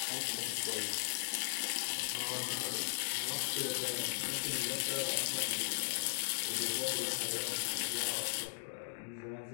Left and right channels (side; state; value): right; silent; digital silence